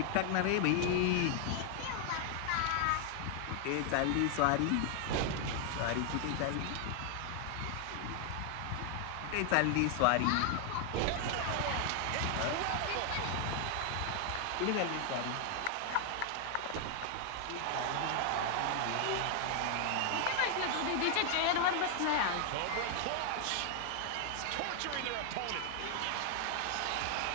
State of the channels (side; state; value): both; different; correlation 0.00